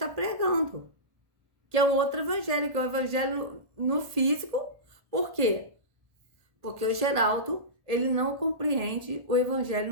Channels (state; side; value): late; left; 1.8 ms